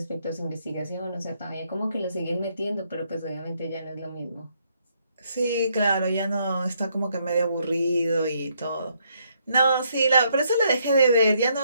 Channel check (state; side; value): inverted; both; correlation -0.73